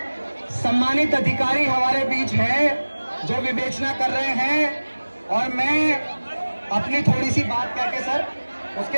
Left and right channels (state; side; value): inverted; both; correlation -1.00